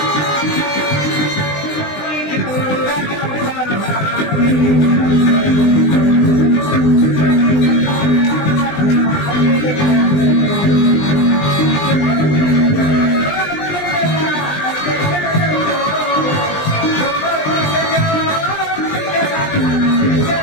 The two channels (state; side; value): late; right; 20 ms